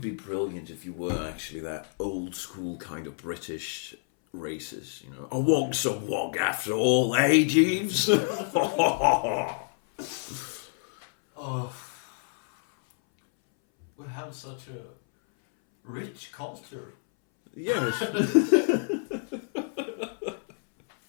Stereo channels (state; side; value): silent; right; 59 dB below the other